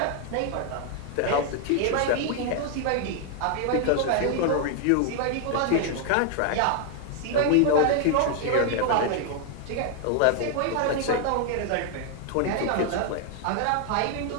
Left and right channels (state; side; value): different; both; correlation 0.00